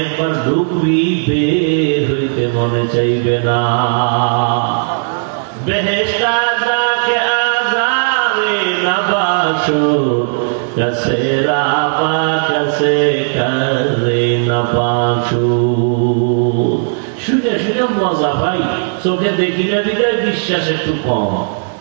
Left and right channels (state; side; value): silent; left; digital silence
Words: একবার ঢুকবি বের হইতে মনে চাইবে না। বেহেশতা যাকে আজারে না বাসো, কাছে রাবা কাছে করে না বাসো। শুনে শুনে মজা পাই, চোখে দেখি না বিদায় বিশ্বাস একটু কম।